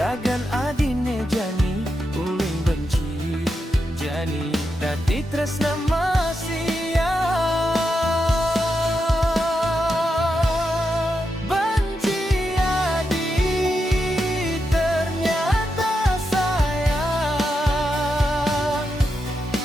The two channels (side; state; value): both; normal; correlation 0.86